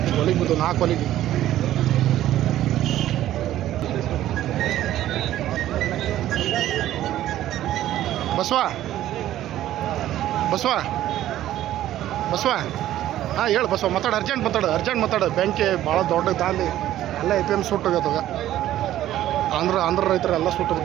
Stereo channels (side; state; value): left; quieter; 13.2 dB